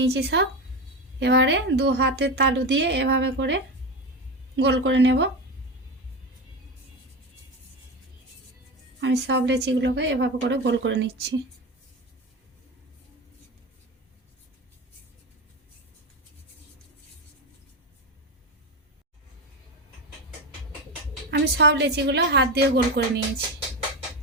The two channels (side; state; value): both; normal; correlation 0.19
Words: সব। এবারে 2 হাতের তালু দিয়ে এভাবে করে গোল করে নেব। আমি সব লেচিগুলোকে এভাবে করে গোল করে নিচ্ছি। আমি সব লেচিগুলো হাত দিয়ে গোল করে নিয়েছি।